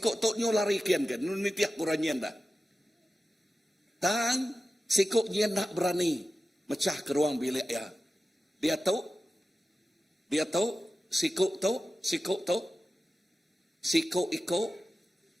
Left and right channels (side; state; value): both; normal; correlation 0.93